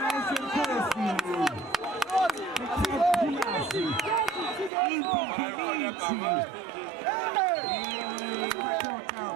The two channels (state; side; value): drops out; left; at 4.7 s